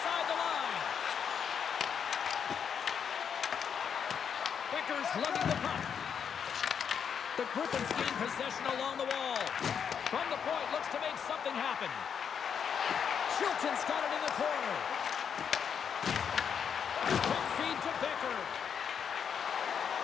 the line. Becker's lugging the puck. The Griffins gain possession along the wall. From the point, looks to make something happen. Chilton's got it in the corner. Quick feed to Becker.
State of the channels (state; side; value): quieter; right; 7.4 dB